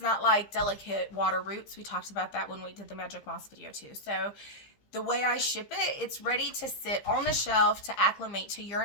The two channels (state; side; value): late; right; 15 ms